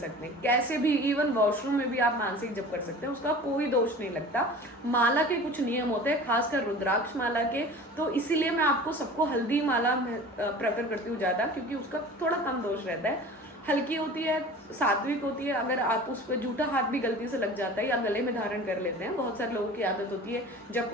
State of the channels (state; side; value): normal; both; correlation 0.40